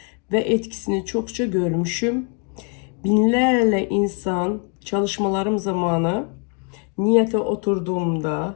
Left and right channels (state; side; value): quieter; right; 38.4 dB